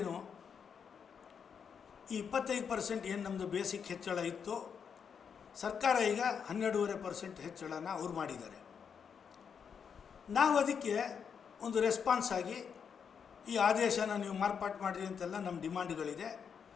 ಈ 25% ಏನು ನಮ್ಮದು ಬೇಸಿಕ್ ಹೆಚ್ಚಳ ಇತ್ತು, ಸರ್ಕಾರ ಈಗ 12.5% ಹೆಚ್ಚಳನ ಅವ್ರು ಮಾಡಿದ್ದಾರೆ. ನಾವು ಅದಕ್ಕೆ ಒಂದು ರೆಸ್ಪಾನ್ಸ್ ಆಗಿ ಈ ಆದೇಶನ ನೀವು ಮಾರ್ಪಾಟು ಮಾಡಿರಿ ಅಂತೆಲ್ಲ ನಮ್ಮ ಡಿಮಾಂಡ್ಗಳಿದೆ.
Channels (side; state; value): right; quieter; 6.9 dB